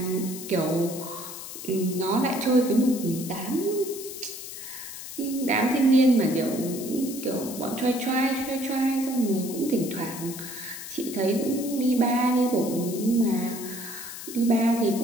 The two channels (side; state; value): left; noise; hiss, 10 dB below the sound